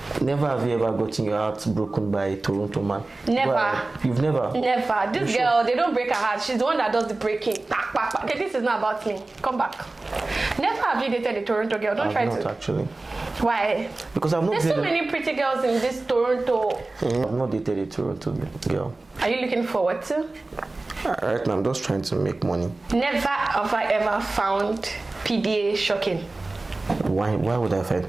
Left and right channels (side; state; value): left; quieter; 3.2 dB